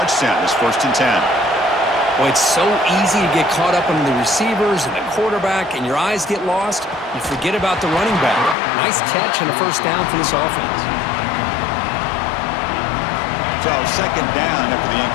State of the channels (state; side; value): drops out; right; at 8.6 s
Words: It's 1st and 10. Well, it's so easy to get caught up on the receivers and the quarterback, and your eyes get lost. You forget about the running back. Nice catch and a first down for this offense. So second down after the